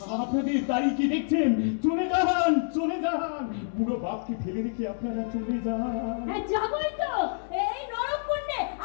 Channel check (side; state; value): right; silent; digital silence